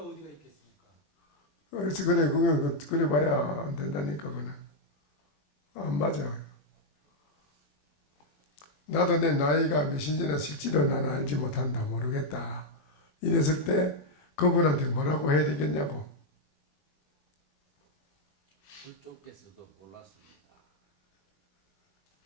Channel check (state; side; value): late; right; 21 ms